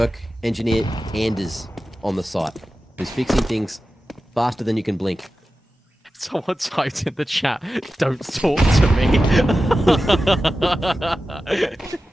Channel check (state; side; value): normal; both; correlation 0.93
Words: engineer Anders on the site, who's fixing things faster than you can blink. Someone typed in the chat, "Don't talk to me."